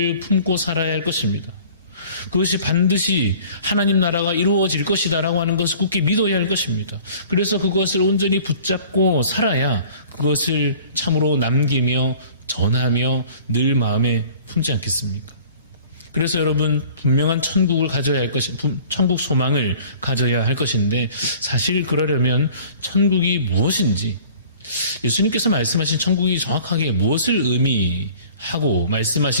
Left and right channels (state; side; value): inverted; both; correlation -0.48